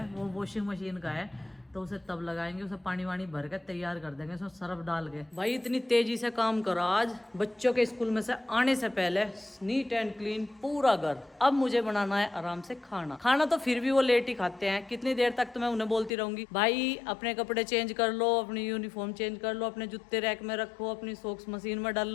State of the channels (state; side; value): drops out; right; at 16.2 s